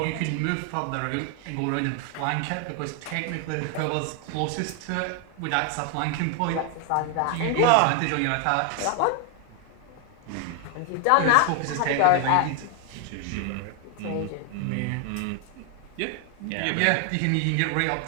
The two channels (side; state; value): both; different; correlation 0.00